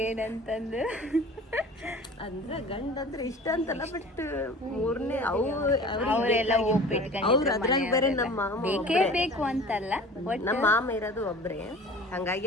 ಏನಂತಂದು. ಅಂದ್ರ ಗಂಡ ಅಂದ್ರೆ ಇಷ್ಟ ಅಂತಲ್ಲ, ಬಟ್ ಮೂರನೇ ಅವರೆಲ್ಲ ಅವ್ರು ಅದ್ರಾಗ ಬೇರೆ ನಮ್ಮ ಮಾಮ ಬೇಕೇ ಬೇಕು ಅಂತಲ್ಲ, ನಮ್ಮ ಮಾಮ ಇರೋದು ಒಬ್ರೇ. ಹಂಗಾಗಿ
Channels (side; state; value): both; normal; correlation 0.42